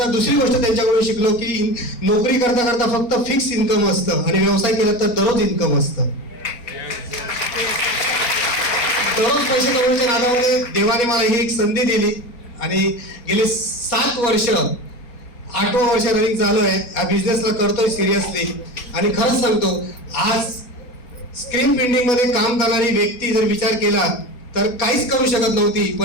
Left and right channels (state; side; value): late; right; 4.3 ms